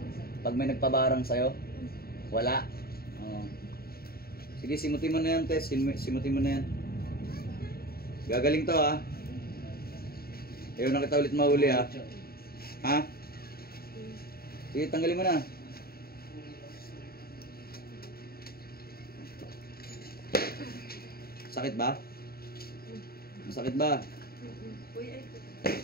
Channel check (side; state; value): right; late; 0.44 ms